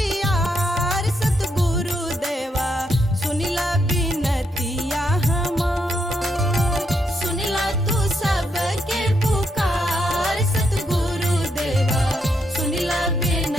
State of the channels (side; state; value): both; normal; correlation 0.78